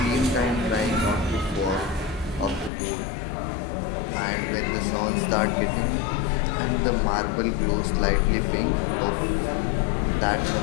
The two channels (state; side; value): drops out; right; at 2.7 s